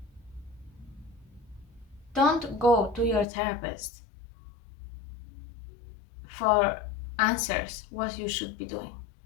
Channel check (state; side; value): drops out; right; at 3.2 s